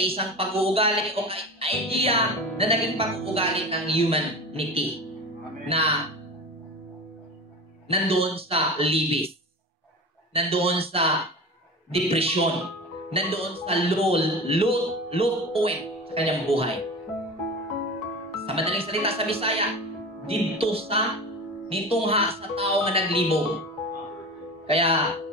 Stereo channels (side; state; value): both; normal; correlation 0.31